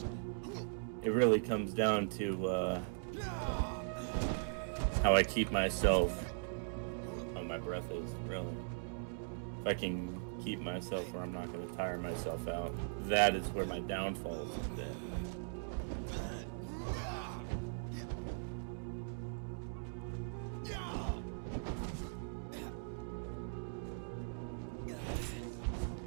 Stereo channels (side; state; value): left; silent; digital silence